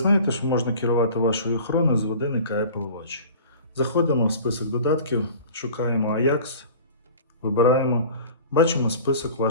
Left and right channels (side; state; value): both; inverted; correlation -0.42